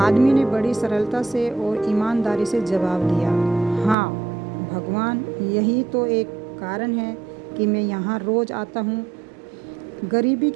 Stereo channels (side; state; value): left; drops out; at 4.0 s